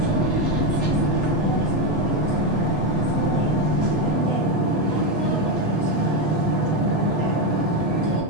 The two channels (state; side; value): late; right; 8.1 ms